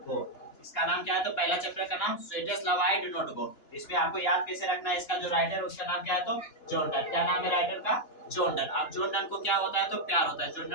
go. इसका नाम क्या है? तो पहला चैप्टर का नाम sweetest love I do not go. इसमें आपको याद कैसे रखना है? इसका जो राइटर है उसका नाम क्या है? तो जॉन डन। क्या नाम है राइटर का? John Donne. अब जॉन डन को क्या होता है? तो प्यार होता है। जॉन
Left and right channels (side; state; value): right; late; 2.9 ms